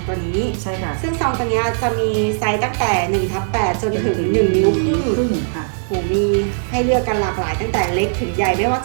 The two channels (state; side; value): silent; left; digital silence